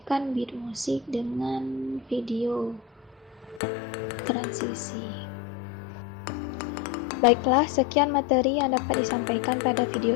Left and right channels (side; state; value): right; drops out; at 3.6 s